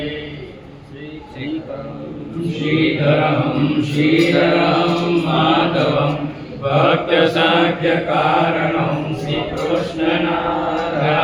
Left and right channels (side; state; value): both; identical; correlation 1.00